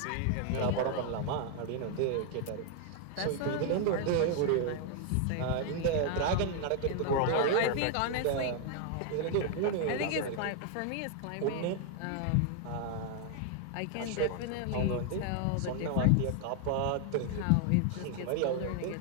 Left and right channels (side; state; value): both; different; correlation 0.00